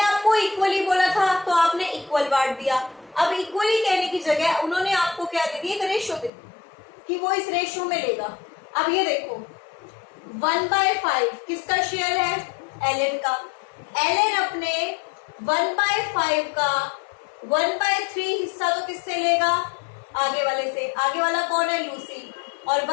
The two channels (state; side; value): drops out; right; at 6.3 s